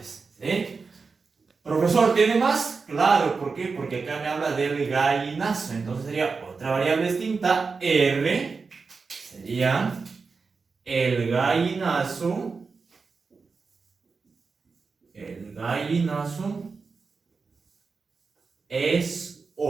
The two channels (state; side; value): quieter; left; 4.7 dB